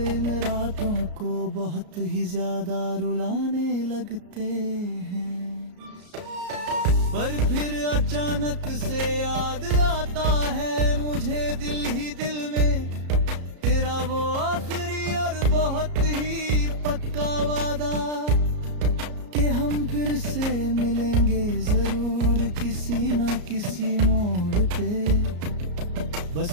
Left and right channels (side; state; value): left; late; 33 ms